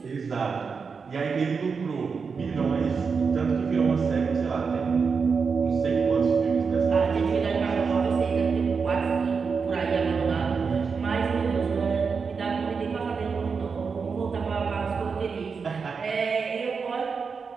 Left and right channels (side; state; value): left; quieter; 5.4 dB